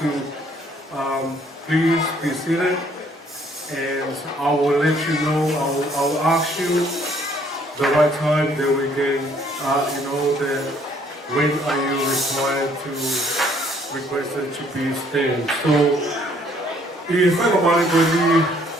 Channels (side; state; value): both; normal; correlation 0.63